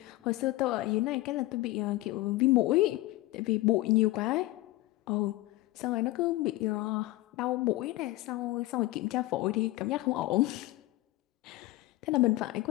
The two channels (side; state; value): right; quieter; 18.4 dB